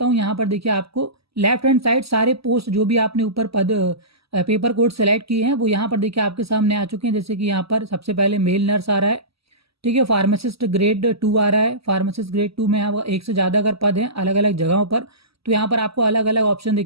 हूँ। यहाँ पर देखिए आपको लेफ्ट हैंड साइड सारे पोस्ट जो भी आपने ऊपर पद पेपर कोड सेलेक्ट किए हैं वो यहाँ पर देखिए आपके सामने आ चुके हैं। जैसे कि यहाँ पर सबसे पहले मेल नर्स आ रहा है, ठीक है। फार्मासिस्ट ग्रेड 2 आ रहा है। फार्मासिस्ट ग्रेड 2 में यहाँ एक से ज़्यादा अगर पद हैं अलग अलग जगहों पर, तो यहाँ पर आपको अलग अलग ऑप्शन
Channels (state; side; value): late; left; 0.76 ms